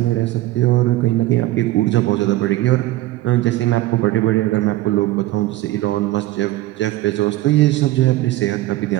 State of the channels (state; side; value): quieter; left; 16.5 dB